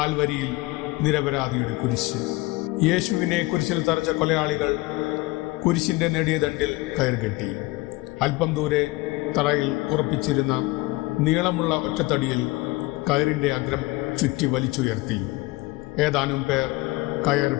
നിരപരാധിയുടെ കുരിശ്. യേശുവിനെ കുരിശിൽ തറച്ച കൊലയാളികൾ കുരിശിൻ്റെ നെടിയ ദണ്ടിൽ കയർകെട്ടി. അല്പം ദൂരെ തറയിൽ ഉറപ്പിച്ചിരുന്ന നീളമുള്ള ഒറ്റത്തടിയിൽ കയറിൻ്റെ അഗ്രം ചുറ്റി വലിച്ചുയർത്തി. ഏതാനും പേർ കയർ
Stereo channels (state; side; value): quieter; right; 21.5 dB